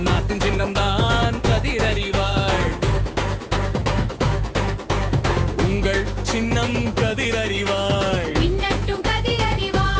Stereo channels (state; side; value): identical; both; correlation 1.00